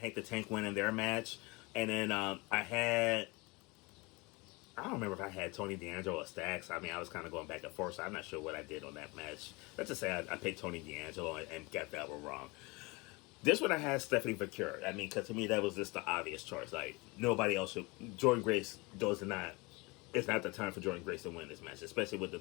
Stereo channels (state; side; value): quieter; right; 25.7 dB